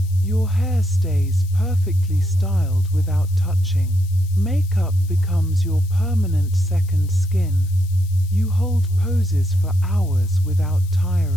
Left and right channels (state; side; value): noise; left; hiss, 23 dB below the sound